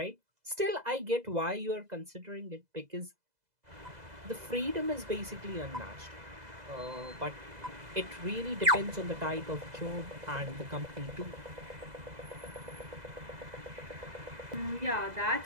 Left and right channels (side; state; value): left; late; 2.0 ms